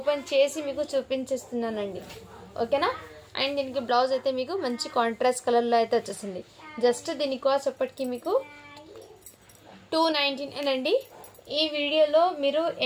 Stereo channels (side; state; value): both; identical; correlation 1.00